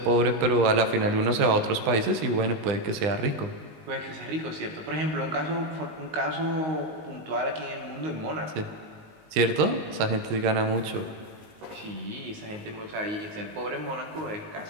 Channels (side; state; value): left; late; 20 ms